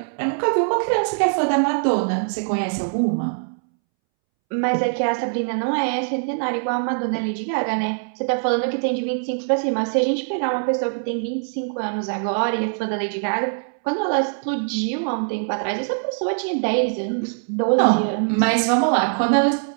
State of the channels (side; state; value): left; silent; 64 dB below the other